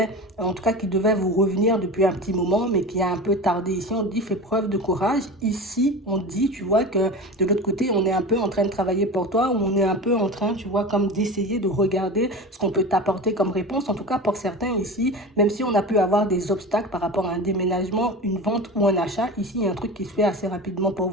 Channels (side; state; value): both; normal; correlation 0.30